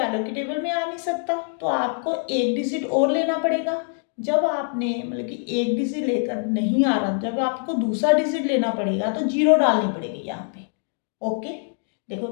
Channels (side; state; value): right; silent; 58 dB below the other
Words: के टेबल में आ नहीं सकता, तो आपको एक डिजिट और लेना पड़ेगा। जब आपने मतलब कि एक डिजिट लेकर नहीं आ रहा, जब आपको दूसरा डिजिट लेना पड़ेगा तो 0 डालनी पड़ेगी यहाँ पे। ओके, देखो